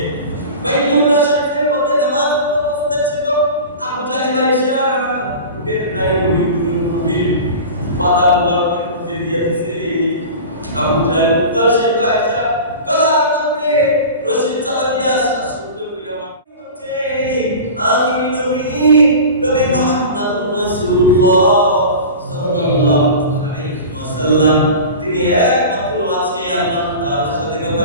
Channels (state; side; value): inverted; both; correlation -0.33